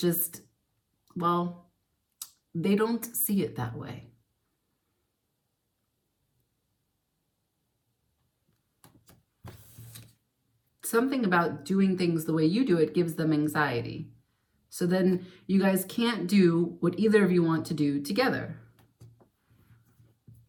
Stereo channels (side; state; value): both; identical; correlation 1.00